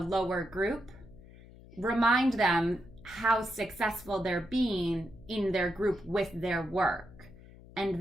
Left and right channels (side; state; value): left; noise; hum, 20 dB below the sound